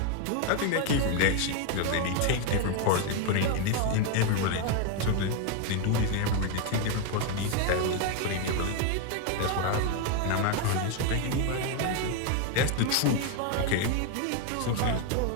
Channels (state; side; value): different; both; correlation 0.01